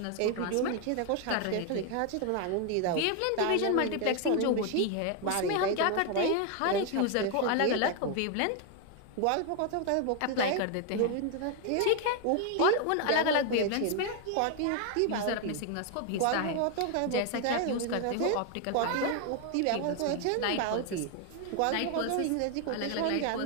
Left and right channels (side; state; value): both; different; correlation 0.01